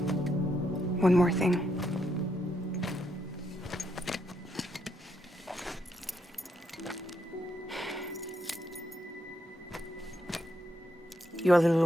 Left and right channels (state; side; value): normal; both; correlation 0.79